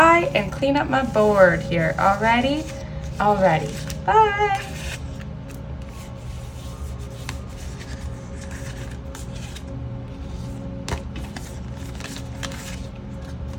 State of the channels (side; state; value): both; identical; correlation 1.00